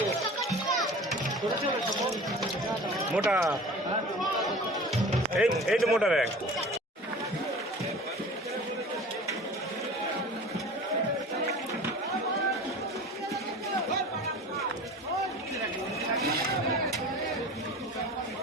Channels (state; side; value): normal; both; correlation 0.39